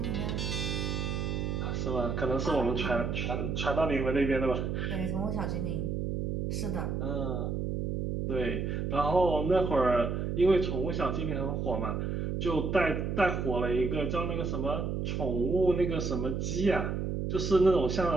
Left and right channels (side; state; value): right; noise; hum, 1 dB below the sound